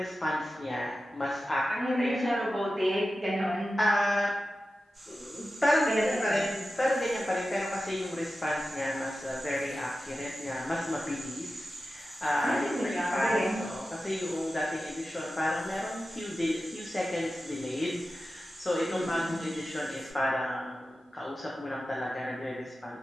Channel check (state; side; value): normal; both; correlation 0.93